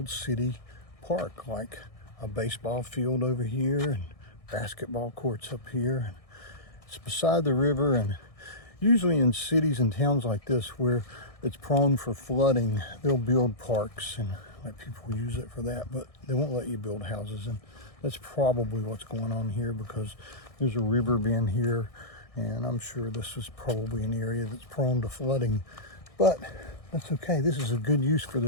city park, like a baseball field over here and basketball courts up here. It's beside the river, and usually in cities and towns like this where it's prone for flooding, they'll build parks and let people use it for that, but they won't let you build houses. And that's probably what's going on here, because there's a river being here, and I'm sure this is probably an area that's prone to flooding, but that's okay. This is a good use for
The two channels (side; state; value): right; late; 1.6 ms